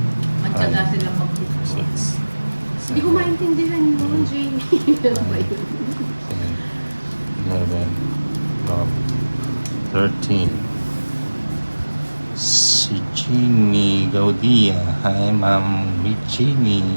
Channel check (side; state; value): both; inverted; correlation -1.00